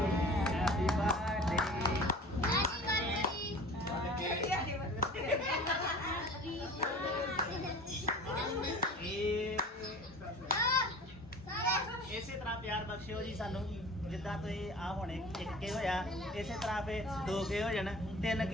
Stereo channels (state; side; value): normal; both; correlation 0.41